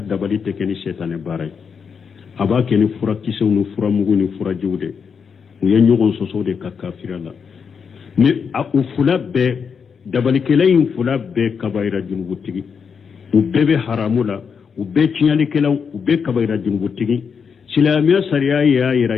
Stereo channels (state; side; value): quieter; right; 6.3 dB